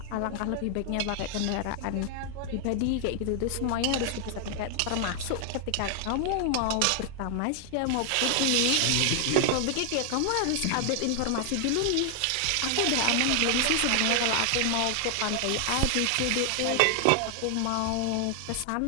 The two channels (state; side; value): different; both; correlation 0.00